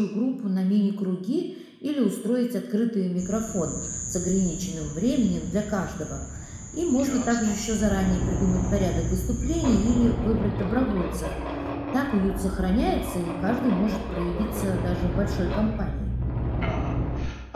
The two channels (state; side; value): identical; both; correlation 1.00